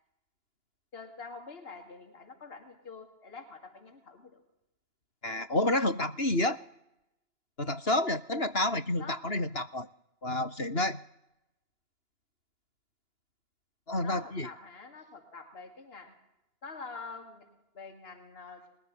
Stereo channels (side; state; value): right; late; 2.9 ms